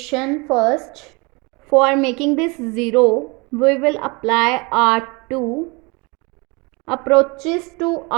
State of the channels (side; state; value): left; quieter; 28.2 dB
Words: first. For making this 0, we will apply R2 approaches to